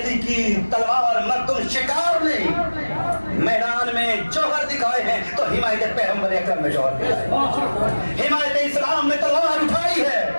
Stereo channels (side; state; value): both; inverted; correlation -1.00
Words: کی تلوار مردم شکار نہیں میدان میں جوہر دکھائے ہیں تو حمایت پیغمبر اکرم میں جوہر دکھائے، حمایت اسلام میں تلوار اٹھائی ہے۔